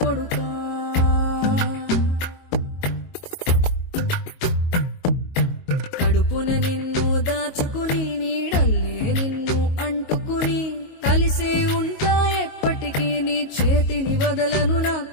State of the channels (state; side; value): late; right; 22 ms